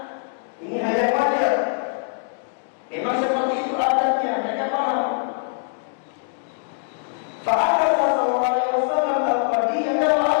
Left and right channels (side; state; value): right; silent; digital silence